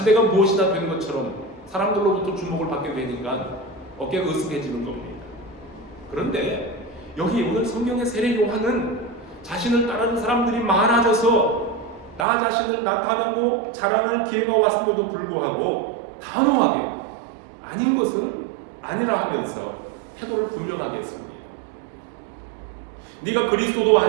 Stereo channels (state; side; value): drops out; left; at 12.2 s